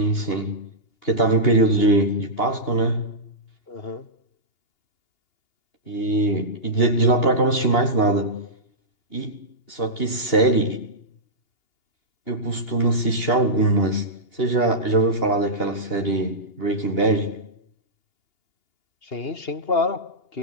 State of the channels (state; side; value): late; right; 2.8 ms